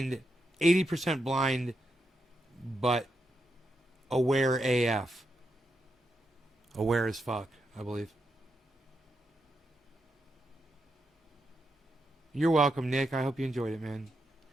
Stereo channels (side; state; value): both; normal; correlation 0.84